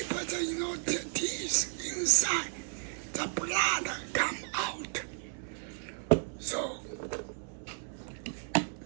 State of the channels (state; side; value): silent; left; 55 dB below the other